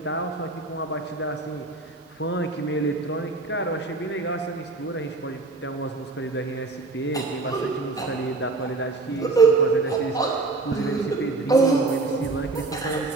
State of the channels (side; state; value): left; quieter; 3.5 dB